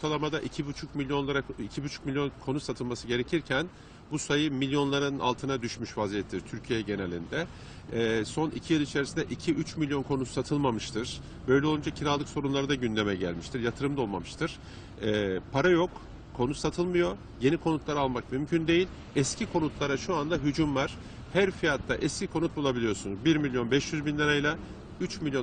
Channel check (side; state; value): both; identical; correlation 1.00